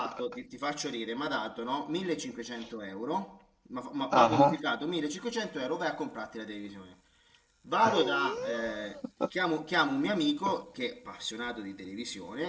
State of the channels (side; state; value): both; identical; correlation 1.00